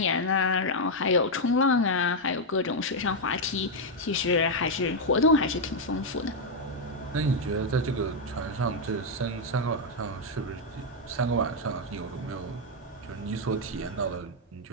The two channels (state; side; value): normal; both; correlation 0.00